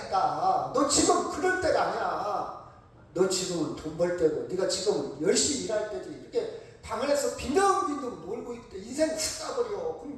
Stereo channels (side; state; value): both; identical; correlation 1.00